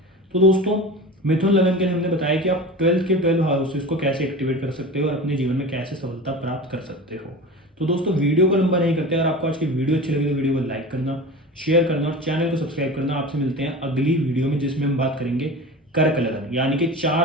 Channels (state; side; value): normal; both; correlation 0.32